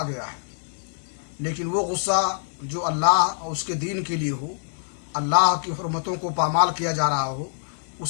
गया है। लेकिन वो गुस्सा जो अल्लाह और उसके दीन के लिए हो, अल्लाह की हुर्मतों को पामाल किया जा रहा हो,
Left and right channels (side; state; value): right; silent; digital silence